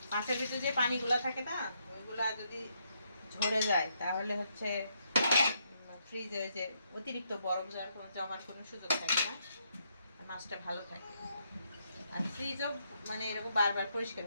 মাছের ভিতরে যে পানিগুলো থাকে না, ওইগুলা যদি ঝরে যায় তাহলে হচ্ছে ফ্রিজে ওই যে অতিরিক্ত বরফ জমার কোনো সুযোগ থাকে না, আর মাছটা ভালো থাকে। আর ফ্রিজও মানে এরকম বারবার পরিষ্কার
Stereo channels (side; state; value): both; inverted; correlation -0.76